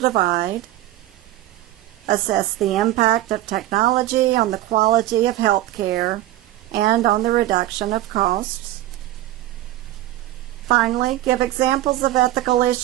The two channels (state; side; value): quieter; left; 14.8 dB